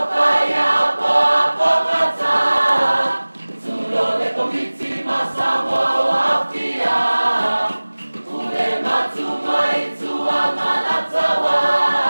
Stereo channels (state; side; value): inverted; both; correlation -1.00